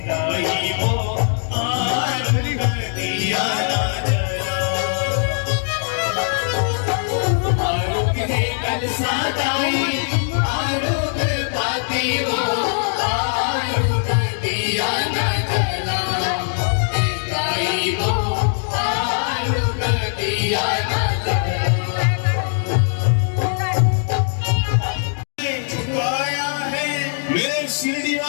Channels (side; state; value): right; silent; digital silence